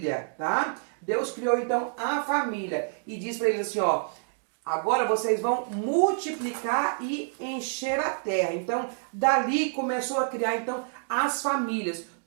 tá? Deus criou então a família e diz para eles assim, ó, agora vocês vão multiplicar e encher a terra. Então, dali começou a criar então as famílias.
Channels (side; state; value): left; silent; digital silence